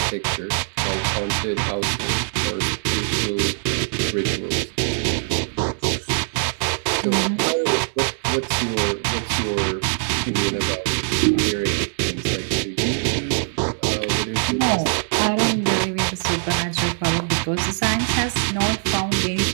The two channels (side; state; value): left; silent; digital silence